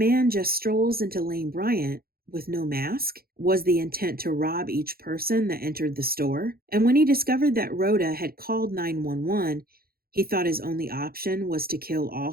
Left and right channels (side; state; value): left; late; 0.44 ms